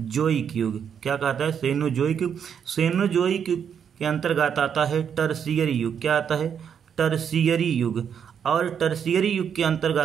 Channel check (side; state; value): left; quieter; 7.8 dB